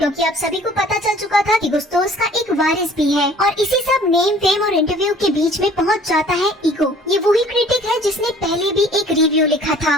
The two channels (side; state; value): both; normal; correlation 0.52